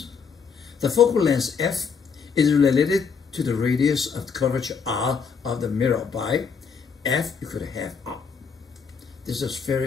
the focal length F is related to the radius of the curvature R of the mirror by F equal to half R. This is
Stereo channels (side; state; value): right; quieter; 6.0 dB